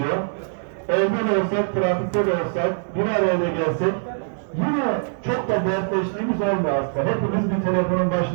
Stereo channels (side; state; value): left; silent; digital silence